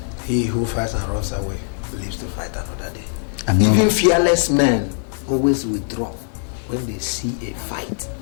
He who fights and runs away lives to fight another day. Even fearless men always withdraw when they see a fight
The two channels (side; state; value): right; silent; digital silence